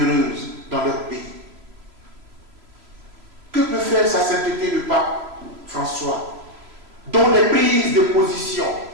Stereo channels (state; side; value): late; left; 3.0 ms